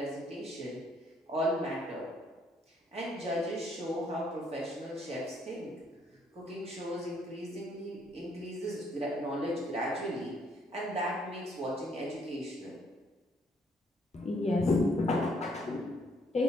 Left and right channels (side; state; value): both; normal; correlation 0.68